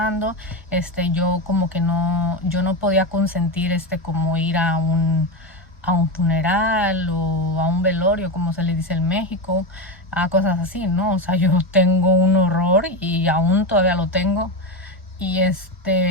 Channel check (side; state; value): both; normal; correlation 0.14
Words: Yo como que yo no podía consentir como ir a un funeral o a un velorio, como se le dice en México, a cosas así, ¿no? O sea, yo tengo un horror y aún todavía lo tengo. Y